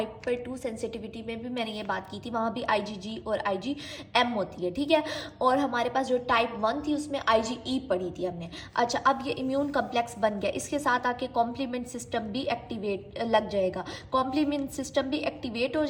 2 सेंसिटिविटी में भी मैंने ये बात की थी, वहाँ भी IgG और IgM होती है। ठीक है, और हमारे पास जो टाइप 1 थी, उसमें IgE पढ़ी थी हमने। अच्छा, अब ये इम्यून कम्प्लेक्स बन गया, इसके साथ आके कॉम्प्लीमेंट सिस्टम भी एक्टिवेट लग जाएगा, कॉम्प्लीमेंट सिस्टम भी एक्टिवेट हो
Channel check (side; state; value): both; identical; correlation 1.00